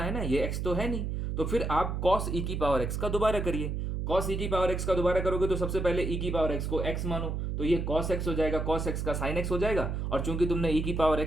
है ना, ये एक्स तो है नहीं, तो फिर आप कॉस ई की पावर एक्स का दोबारा करिए। कॉस ई की पावर एक्स का दोबारा करोगे तो सबसे पहले ई की पावर एक्स को एक्स मानो, तो ये कॉस एक्स हो जाएगा, कॉस एक्स का साइन एक्स हो जाएगा। और चूंकि तुमने ई की पावर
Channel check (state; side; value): noise; right; hum, 2 dB below the sound